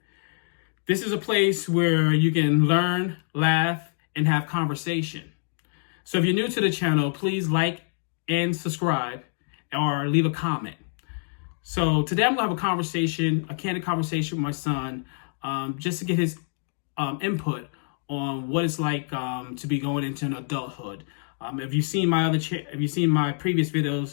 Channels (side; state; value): right; silent; digital silence